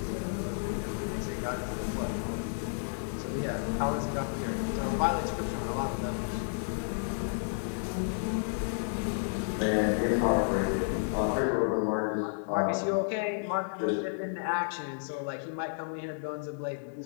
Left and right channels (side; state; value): right; silent; digital silence